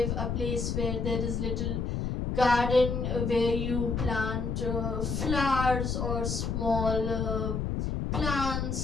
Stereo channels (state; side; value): noise; left; rumble, 1 dB below the sound